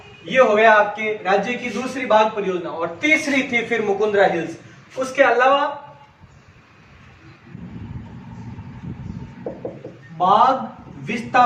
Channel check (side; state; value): both; identical; correlation 1.00